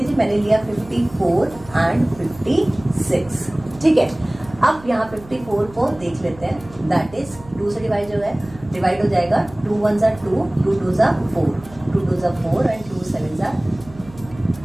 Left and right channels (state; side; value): noise; right; hum, 20 dB below the sound